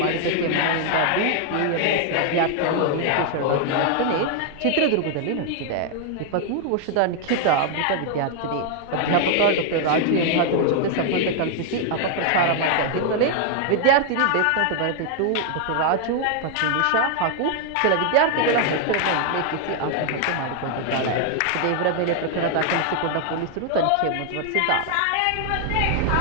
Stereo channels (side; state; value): both; different; correlation 0.00